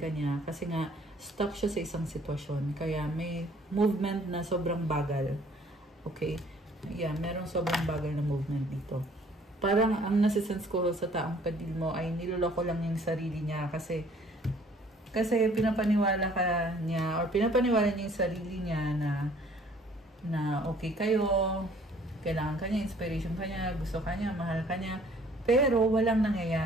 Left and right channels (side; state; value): both; normal; correlation 0.57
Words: niya kasi nga stuck siya sa isang sitwasyon. Kaya may movement na sobrang bagal. Okay? Yeah, merong sobrang bagal na movement dito. Parang ang nasisense ko sa taong kadil mo ay niloloko lang yung sarili niya kasi pinapaniwala ka niya or pinapaniwala niya yung sarili niya na okay kayo, kailangan ka niya, inspiration ka niya, gusto ka niya, mahal ka niya, pero walang